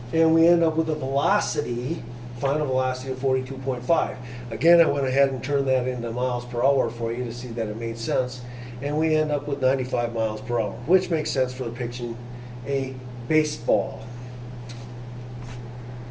And we end up with a velocity, final velocity of 42.5. Again, I went ahead and turned that into miles per hour for you to see that it made sense. And we end up with 95 miles per hour, which makes sense for depicting a baseball.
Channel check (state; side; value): identical; both; correlation 1.00